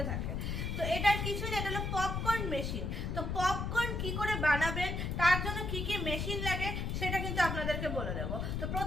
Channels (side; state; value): left; noise; rumble, 2 dB below the sound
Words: থাকে। তো এটার কিছুই না, এটা হলো পপকর্ন মেশিন। তো পপকর্ন কি করে বানাবেন, তার জন্য কি কি মেশিন লাগে সেটা কিন্তু আপনাদেরকে বলে দেবো। তো